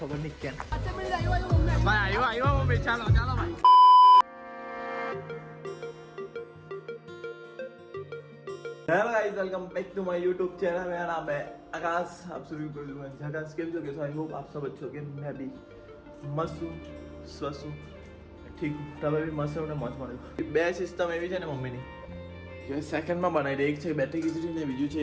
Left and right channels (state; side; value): identical; both; correlation 1.00